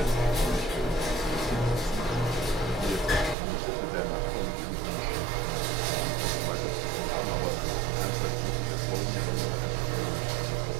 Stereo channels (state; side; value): drops out; left; at 3.4 s